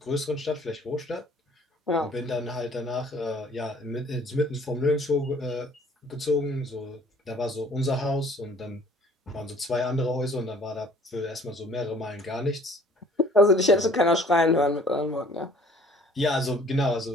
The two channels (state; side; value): normal; both; correlation 0.55